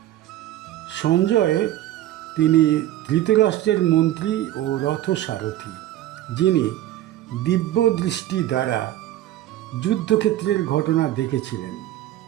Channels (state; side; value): quieter; left; 13.8 dB